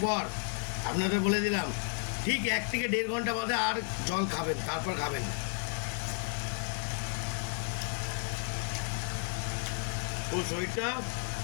পর আপনাদের বলে দিলাম, ঠিক 1 থেকে 1.5 ঘন্টা বাদে আর জল খাবেন, তারপর খাবেন। ও শরীরটা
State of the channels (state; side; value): silent; right; 56 dB below the other